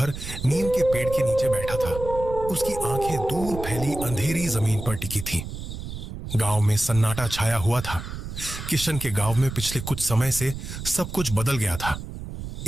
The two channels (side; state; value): right; noise; rumble, 8 dB below the sound